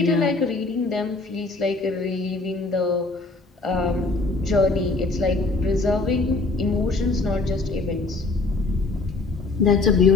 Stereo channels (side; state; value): right; quieter; 3.4 dB